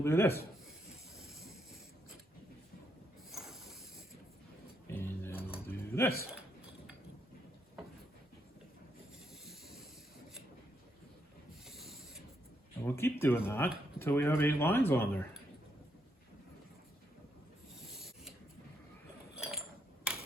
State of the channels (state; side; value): normal; both; correlation 0.77